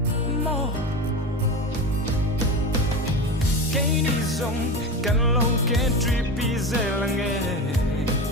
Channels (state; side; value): normal; both; correlation 0.25